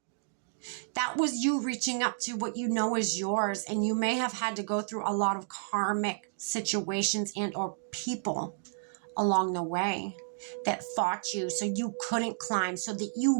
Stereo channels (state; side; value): silent; left; digital silence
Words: That was you reaching up to what you know is yours. And you may have had to go through a lot of karmic situations and or people along the way that fought you so you couldn't climb, so that